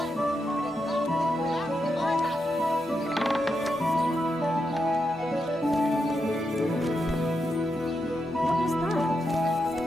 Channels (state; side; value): normal; both; correlation 0.85